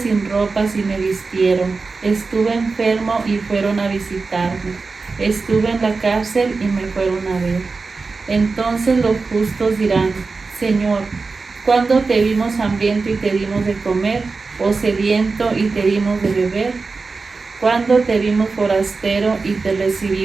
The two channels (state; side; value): quieter; left; 4.2 dB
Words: ropas y me vistieron, estuve enfermo y fueron a visitarme, estuve en la cárcel y me fueron a ver. Entonces los justos dirán: Señor, ¿cuándo te vimos hambriento y te dimos de comer, o sediento y te dimos de beber? ¿Cuándo te vimos forastero y te